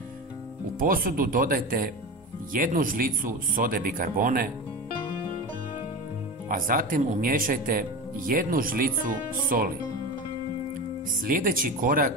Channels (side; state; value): both; normal; correlation 0.26